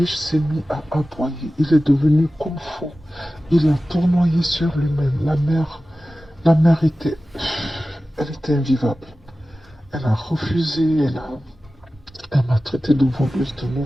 s'est mis à aboyer, il est devenu comme fou. Il a tournoyé sur lui-même. La mère elle était invivable. Elle a refusé, elle m'a traité de voleuse de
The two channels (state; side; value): normal; both; correlation 0.95